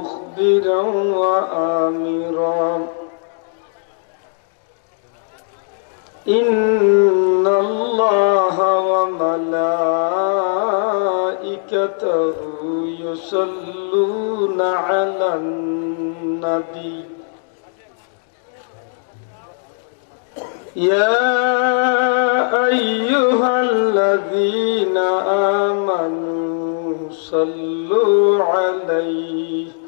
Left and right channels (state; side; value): silent; right; digital silence